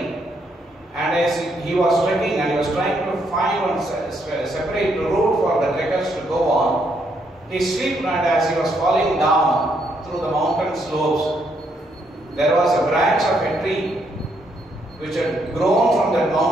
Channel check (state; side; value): normal; both; correlation 0.74